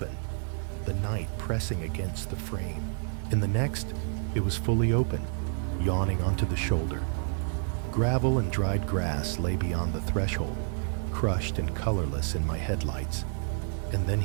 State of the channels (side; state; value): left; silent; 58 dB below the other